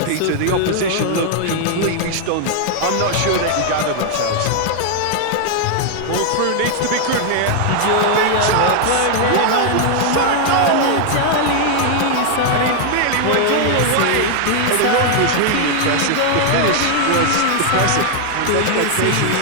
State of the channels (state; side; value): different; both; correlation 0.00